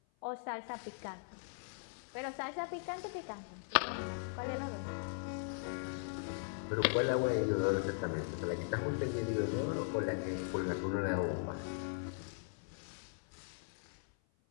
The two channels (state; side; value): silent; right; 52 dB below the other